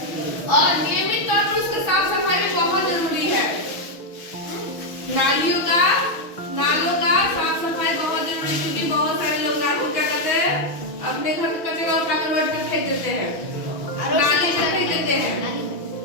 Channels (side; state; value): right; late; 6.1 ms